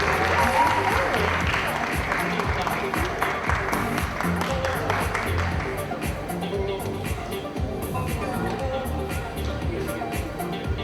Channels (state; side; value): identical; both; correlation 1.00